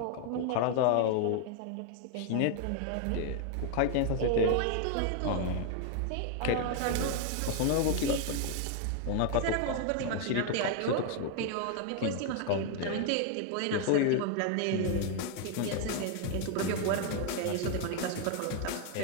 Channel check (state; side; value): different; both; correlation 0.00